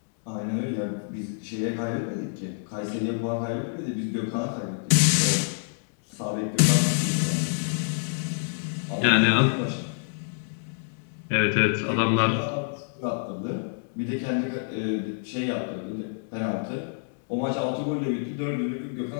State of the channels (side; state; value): right; silent; digital silence